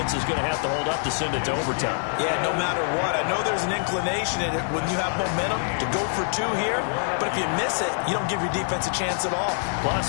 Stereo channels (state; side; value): silent; right; digital silence